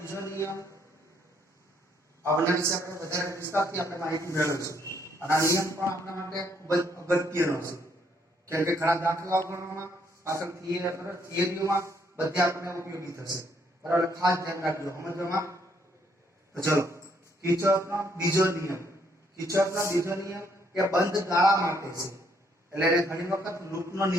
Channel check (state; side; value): normal; both; correlation 0.70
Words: નિયમ આવના વિશે આપણે વધારે વિસ્તારથી આપણે માહિતી મેળવીશું. અને આ નિયમ પણ આપણા માટે ખૂબ જ અગત્યનો છે, કેમ કે ઘણા દાખલાઓ ગણવામાં પાછળ થિયરીઓમાં બધે આપણને ઉપયોગી થશે. બરાબર? ખાસ ધ્યાન રાખજો સમજવામાં. તો ચલો, કિર્ચોફનો બીજો નિયમ. કિર્ચોફનો બીજો નિયમ એ બંધ ગાળા માટે છે, એટલે એને ઘણી વખત લૂપનો